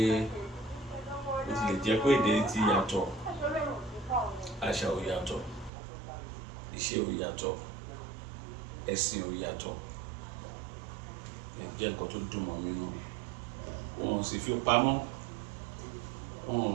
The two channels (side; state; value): left; drops out; at 5.7 s